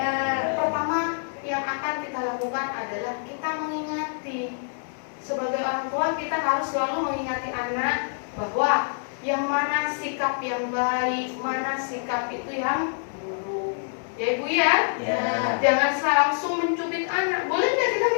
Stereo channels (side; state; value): right; silent; digital silence